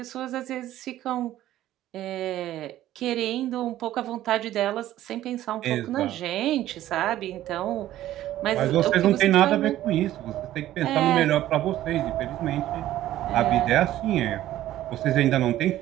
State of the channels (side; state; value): left; quieter; 13.7 dB